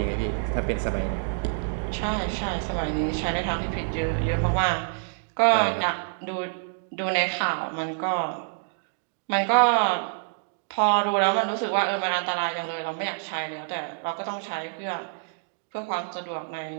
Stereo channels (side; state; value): left; silent; digital silence